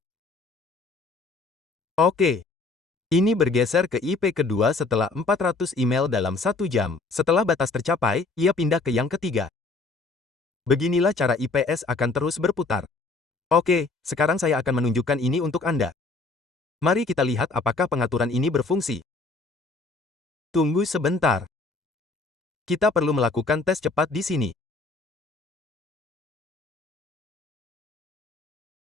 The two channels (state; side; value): quieter; right; 3.6 dB